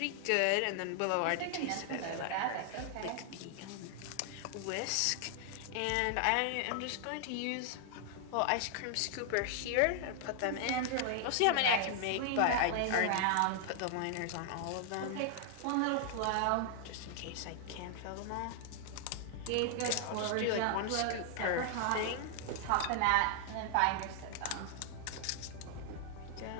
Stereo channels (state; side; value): different; both; correlation 0.00